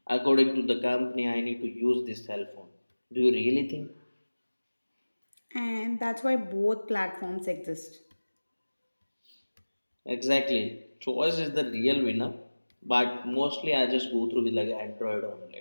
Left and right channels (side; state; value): both; inverted; correlation -1.00